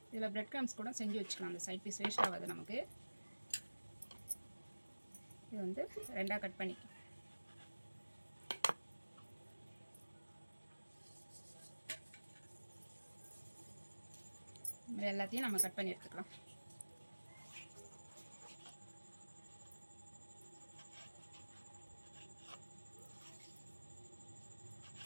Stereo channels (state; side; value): inverted; both; correlation -1.00